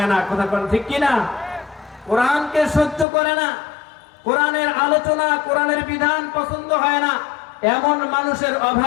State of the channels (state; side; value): drops out; right; at 3.1 s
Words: না, কথা কোন ঠিক কিনা? কোরআনকে সহ্য করে না, কোরআনের আলোচনা, কোরআনের বিধান পছন্দ হয় না, এমন মানুষের